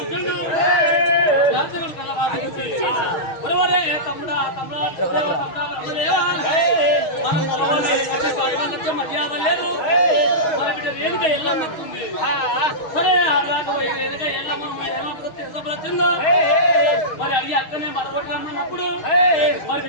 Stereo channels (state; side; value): late; right; 6.4 ms